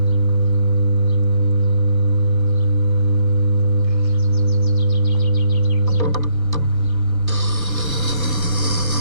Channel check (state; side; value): late; left; 1.4 ms